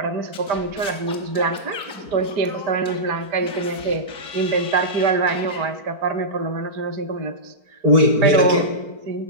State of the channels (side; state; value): left; late; 4.5 ms